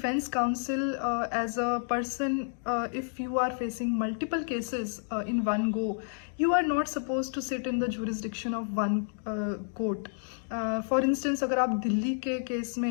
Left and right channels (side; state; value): right; silent; digital silence